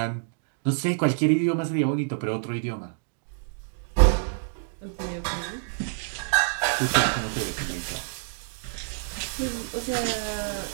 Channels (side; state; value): left; silent; digital silence